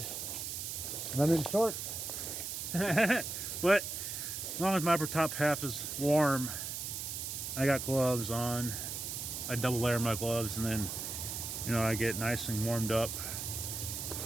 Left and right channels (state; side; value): noise; right; hiss, 5 dB below the sound